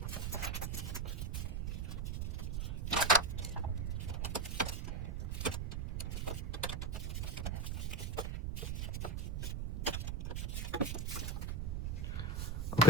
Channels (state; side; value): noise; right; rumble, 2 dB below the sound